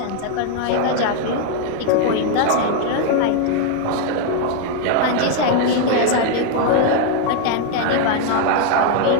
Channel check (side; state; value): both; different; correlation 0.00